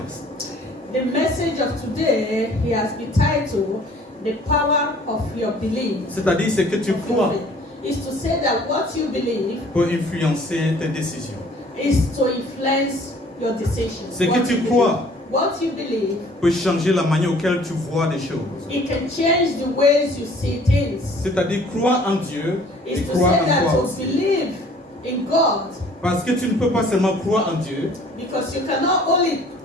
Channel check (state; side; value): normal; both; correlation 0.54